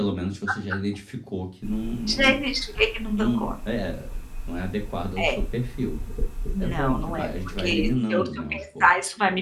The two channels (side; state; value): both; identical; correlation 1.00